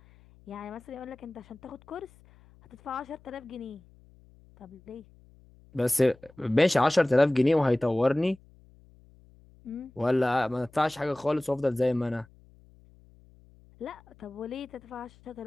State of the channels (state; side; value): noise; left; hum, 27 dB below the sound